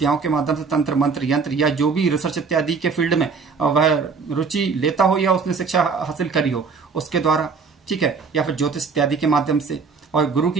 के माध्यम से, तंत्र मंत्र यंत्र या जो भी रिसर्च इत्यादि के फील्ड में वह रुचि लेता हो या उसने शिक्षा हासिल करी हो उसके द्वारा, ठीक है, या फिर ज्योतिष इत्यादि के माध्यम से। और गुरु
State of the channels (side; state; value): left; quieter; 5.1 dB